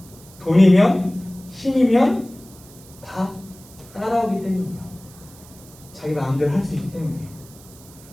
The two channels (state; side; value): noise; right; hiss, 22 dB below the sound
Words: 돈이면, 힘이면 다 따라오기 때문이에요. 자기 마음대로 할 수 있기 때문이에요.